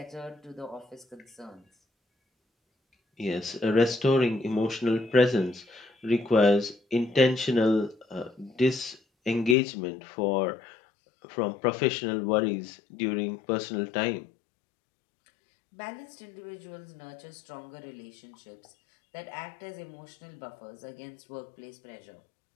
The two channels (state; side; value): drops out; right; at 9.6 s